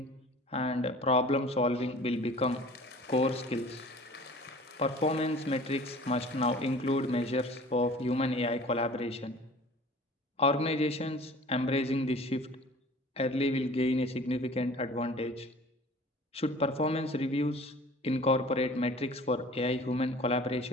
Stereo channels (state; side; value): normal; both; correlation 0.45